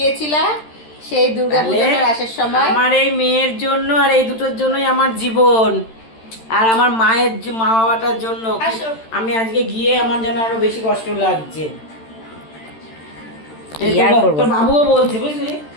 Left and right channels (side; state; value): right; late; 13 ms